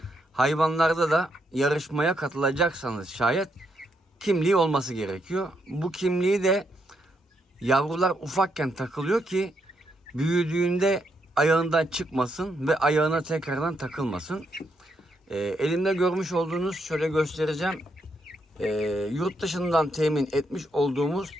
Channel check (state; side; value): normal; both; correlation 0.78